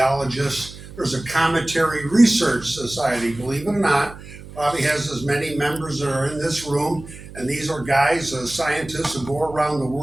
There's a Cometary Research Society, believe it or not, probably has as many members that are in this room. And these are guys, scientists who go around the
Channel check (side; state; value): right; noise; hum, 16 dB below the sound